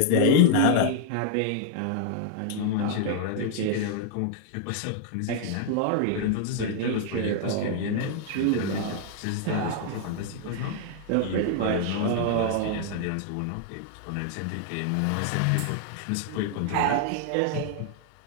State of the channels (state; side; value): different; both; correlation 0.00